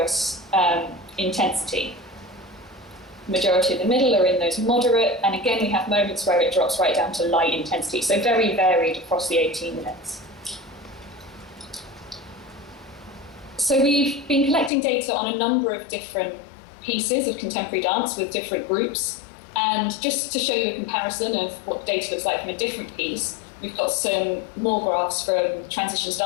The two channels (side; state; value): right; drops out; at 14.7 s